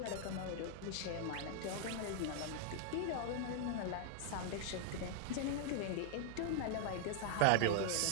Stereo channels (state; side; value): different; both; correlation 0.00